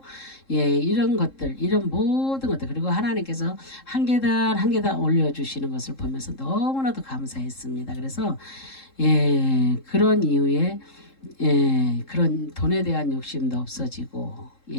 이런 것들 이런 모든 것들 그리고 하나님께서 한 계단 한 계단 올려주시는 것을 보면서 너무나도 감사했습니다. 그래서 그런 이후에 그런 돈에 대한 욕심도 없어지고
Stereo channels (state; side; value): late; right; 3.7 ms